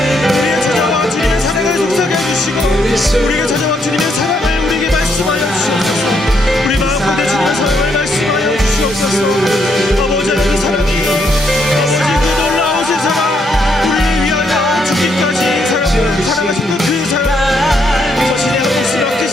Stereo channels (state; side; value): normal; both; correlation 0.74